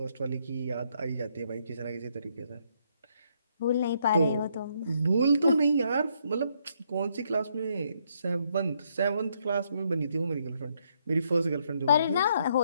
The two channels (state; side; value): inverted; both; correlation -0.73